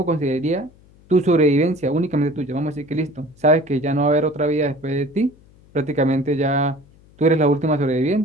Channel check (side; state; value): left; noise; hum, 28 dB below the sound